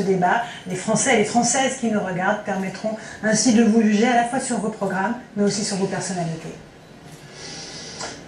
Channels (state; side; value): identical; both; correlation 1.00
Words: débat. Les Français et les Françaises qui nous regardent permettront ainsi de vous juger à la fois sur vos programmes, mais aussi sur vos personnalités.